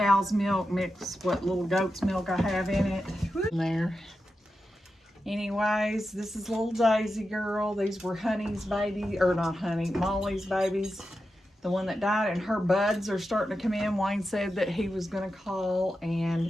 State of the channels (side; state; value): both; normal; correlation 0.90